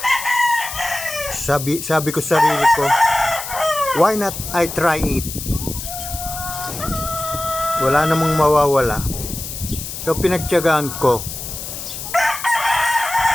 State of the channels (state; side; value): noise; left; hiss, 8 dB below the sound